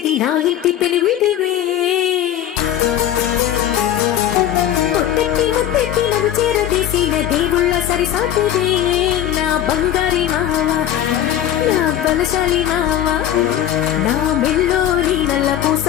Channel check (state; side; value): quieter; right; 11.2 dB